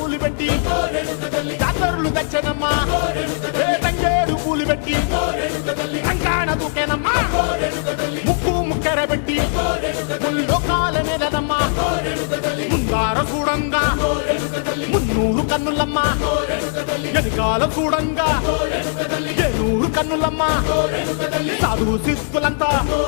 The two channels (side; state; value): right; silent; 66 dB below the other